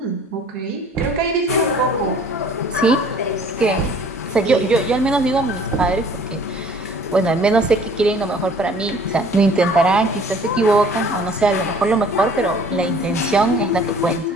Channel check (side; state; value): both; normal; correlation 0.53